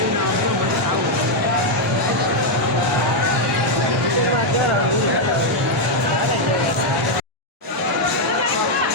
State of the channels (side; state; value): both; normal; correlation 0.00